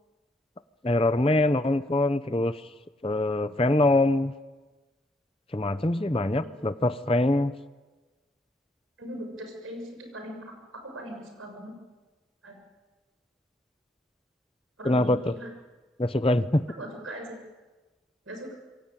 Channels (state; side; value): normal; both; correlation 0.72